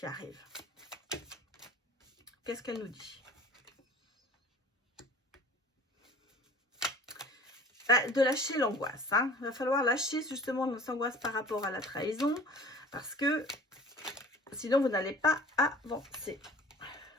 arrive. Qu'est-ce qu'elle nous dit? De lâcher l'angoisse. Hein. Il va falloir lâcher justement l'angoisse par rapport à la trahison. Parce que sinon, vous n'allez pas avancer.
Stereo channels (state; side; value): normal; both; correlation 0.45